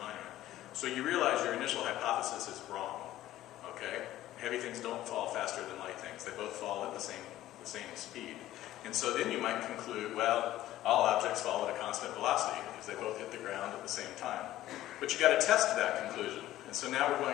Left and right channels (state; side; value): quieter; right; 14.3 dB